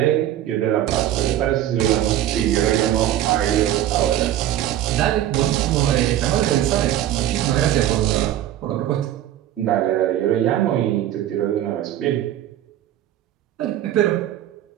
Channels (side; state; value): left; quieter; 12.3 dB